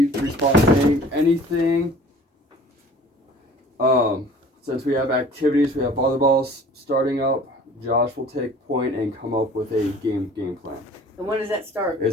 training. Anything. Since we have activities, we have volleyballs starting up. Josh will take point and come up with a game plan. And when does that start? It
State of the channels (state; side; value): normal; both; correlation 0.48